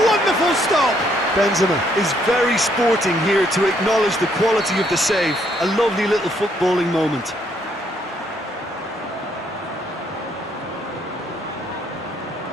wonderful stop! Benzema is very sporting here to acknowledge the quality of the save. A lovely little footballing moment.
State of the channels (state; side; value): normal; both; correlation 0.70